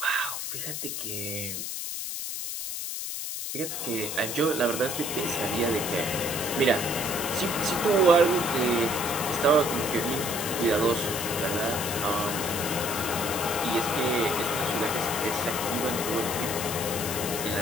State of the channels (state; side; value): noise; left; hiss, 4 dB below the sound